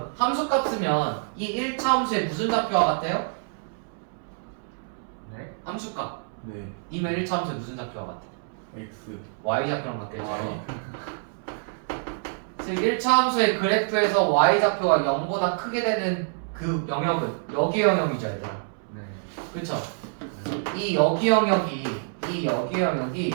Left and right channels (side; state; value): left; silent; 61 dB below the other